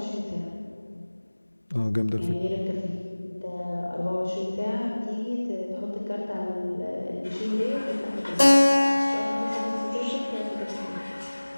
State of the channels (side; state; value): both; inverted; correlation -1.00